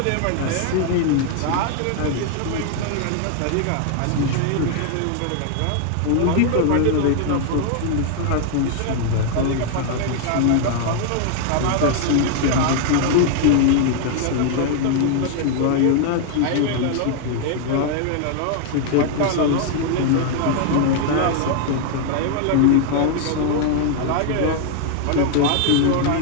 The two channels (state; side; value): different; both; correlation 0.00